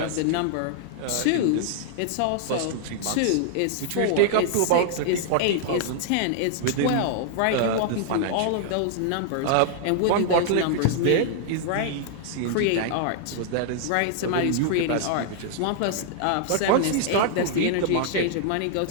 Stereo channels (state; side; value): different; both; correlation -0.01